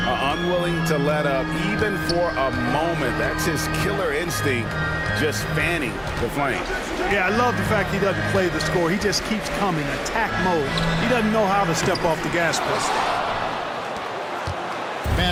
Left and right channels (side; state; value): both; identical; correlation 1.00